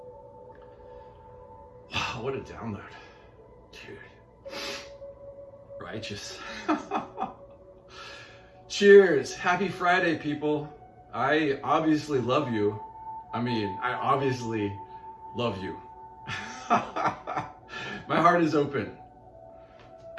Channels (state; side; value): identical; both; correlation 1.00